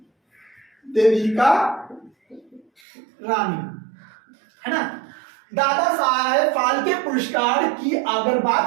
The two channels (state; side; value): drops out; left; at 2.7 s